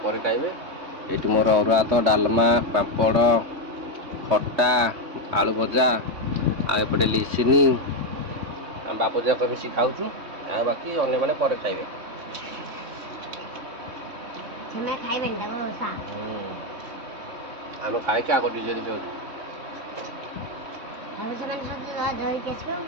ପରେ ଖାଇବେ। ଏଠି ମୋର ଅରୁଆ ଭାତ ଡାଲମା ପାମ୍ପଡ଼ ଖଟା ଆଳୁ ଭଜା ଆଉ ଏପଟେ ଲିସିନି ଆମ ବାପ ଯାକ ମିଶି ଖାଉଛୁ। ଆଉ ବାକି ଅନ୍ୟମାନେ ପରେ ଖାଇବେ। ସେମାନେ ଖାଇବେନି ତାକୁ ବର୍ଷା ଆମେ ଖାଇକି ଆଗ ନିଜେ ନିଜେ ଆଉ ସେମାନେ ସବୁ ଧରିକି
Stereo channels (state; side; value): late; left; 3.6 ms